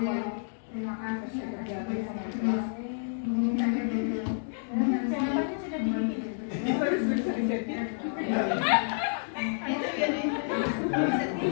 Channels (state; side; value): silent; right; digital silence